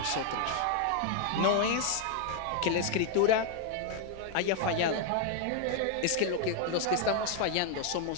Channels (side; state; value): both; different; correlation 0.00